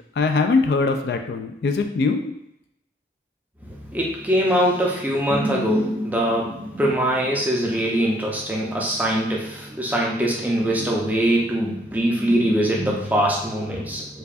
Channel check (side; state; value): both; normal; correlation 0.64